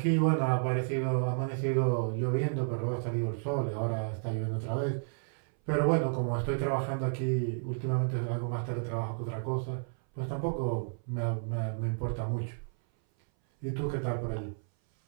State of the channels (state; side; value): silent; left; 57 dB below the other